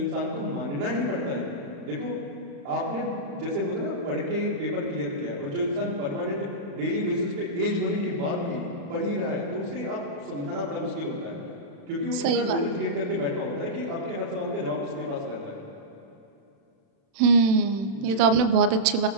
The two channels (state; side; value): late; left; 36 ms